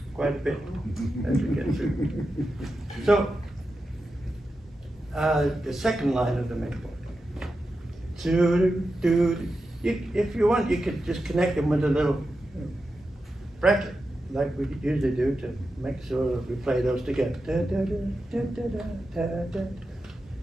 quite a bit as we get through. So, the second line of the main chord. If you want, you could just connect them with a little bracket, like we usually do to make sure we play those together.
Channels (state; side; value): normal; both; correlation 0.90